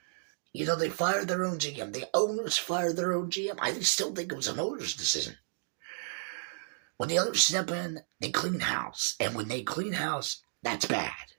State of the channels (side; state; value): left; silent; digital silence